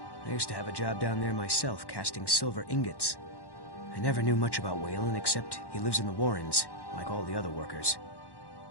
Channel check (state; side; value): late; right; 1.1 ms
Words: I used to have a job down there myself, casting silver ingots. I never knew much about Wayland, except he lives in the Warrens, like all the other workers.